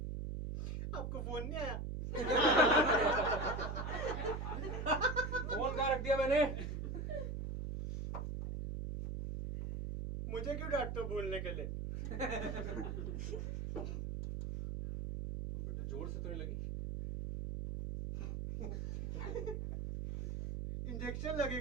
आपको फोन नहीं आया? फोन कहाँ रख दिया मैंने? मुझे क्यों डांटते हो भूलने के लिए? बेटा जोर से तो नहीं लगी? इंजेक्शन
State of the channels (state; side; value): noise; right; hum, 4 dB below the sound